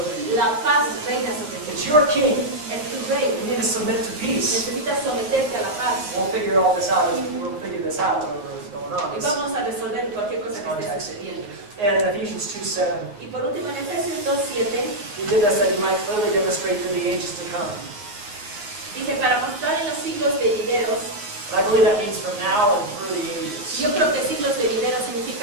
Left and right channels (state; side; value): late; left; 9.7 ms